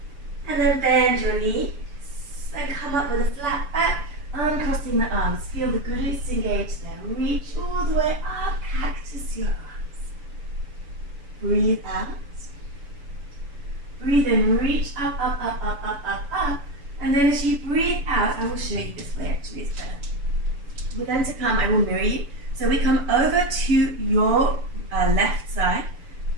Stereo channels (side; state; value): left; late; 6.9 ms